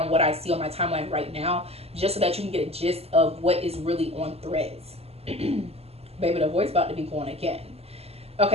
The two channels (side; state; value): left; late; 0.29 ms